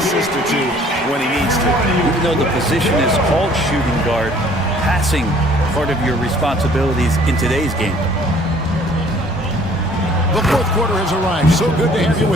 or two when he needs to. Even though the position is called shooting guard, passing part of your responsibilities in today's game. The fourth quarter has arrived. So good to have you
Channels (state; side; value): normal; both; correlation 0.56